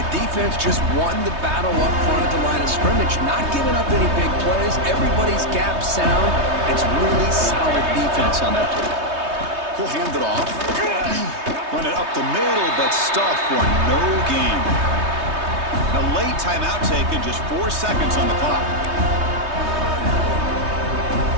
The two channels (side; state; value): left; late; 3.2 ms